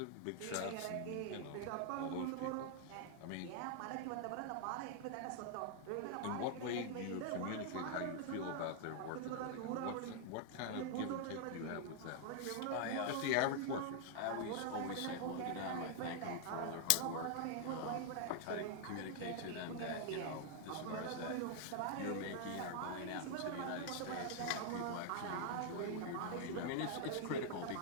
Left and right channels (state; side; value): different; both; correlation 0.00